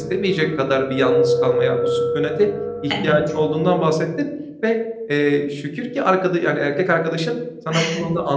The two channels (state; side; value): identical; both; correlation 1.00